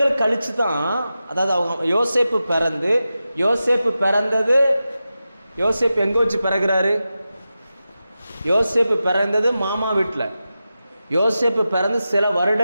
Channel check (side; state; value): both; inverted; correlation -0.92